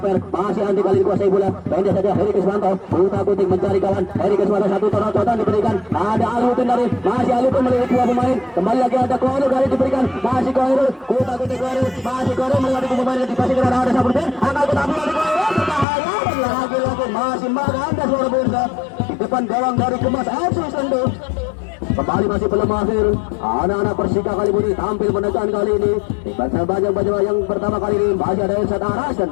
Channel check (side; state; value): right; drops out; at 15.9 s